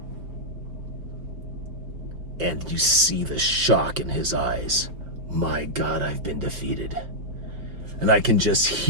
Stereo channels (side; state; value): left; late; 5.3 ms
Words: And you see the shock in his eyes. My God, I've been defeated. And I can just